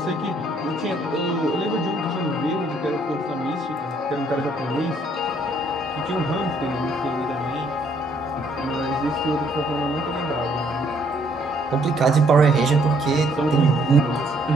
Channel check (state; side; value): normal; both; correlation 0.66